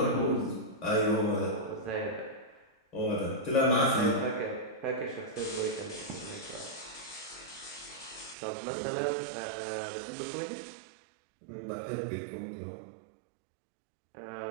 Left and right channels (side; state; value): left; drops out; at 8.3 s